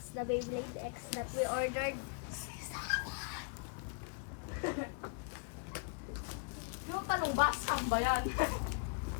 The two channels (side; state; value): right; quieter; 37.3 dB